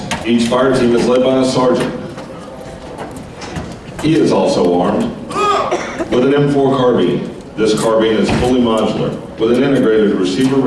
Each fire team is led by a sergeant. He is also armed with an M4 carbine. This carbine is fully modular with an integrated receiver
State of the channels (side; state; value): both; identical; correlation 1.00